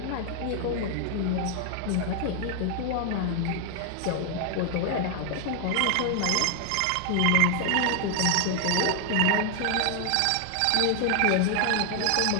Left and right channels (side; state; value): both; different; correlation 0.00